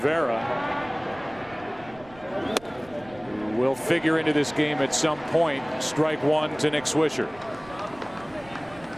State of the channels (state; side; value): noise; right; rumble, 23 dB below the sound